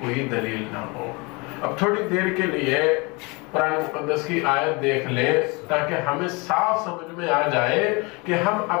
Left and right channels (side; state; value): right; quieter; 27.7 dB